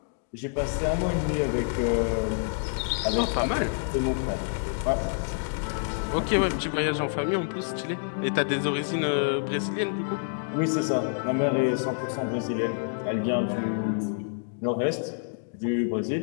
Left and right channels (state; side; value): silent; right; digital silence